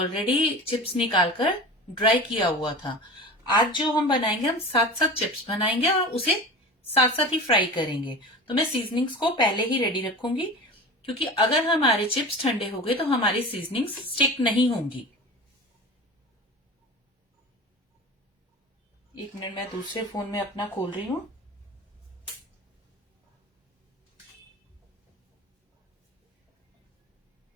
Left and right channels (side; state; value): both; normal; correlation 0.33